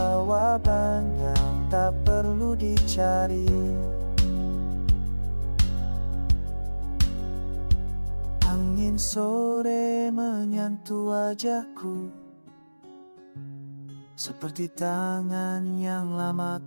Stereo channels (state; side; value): inverted; both; correlation -1.00